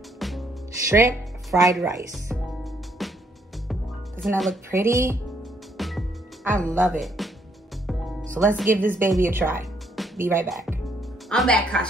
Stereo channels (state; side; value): normal; both; correlation 0.70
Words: shrimp fried rice. Doesn't that look pretty? I love it. So let's give this baby a try. Be right back. I'm back,